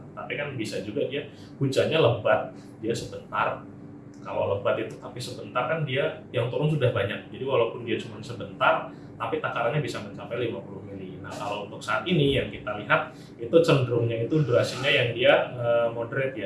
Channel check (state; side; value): identical; both; correlation 1.00